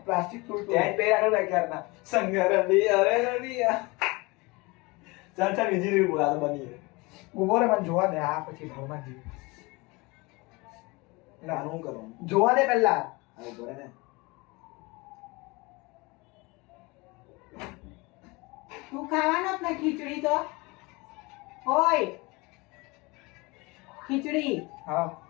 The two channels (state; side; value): quieter; right; 25.0 dB